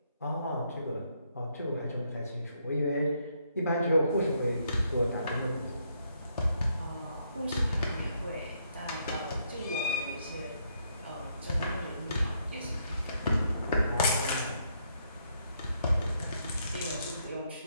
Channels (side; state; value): both; inverted; correlation -0.74